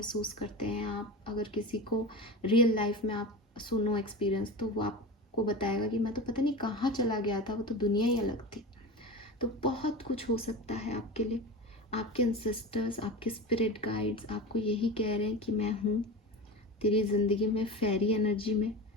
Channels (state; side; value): normal; both; correlation 0.28